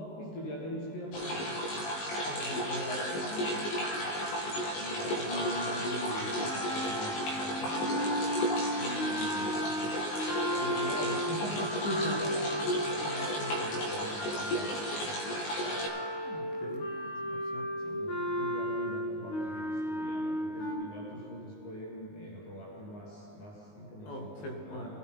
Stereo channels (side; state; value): right; late; 19 ms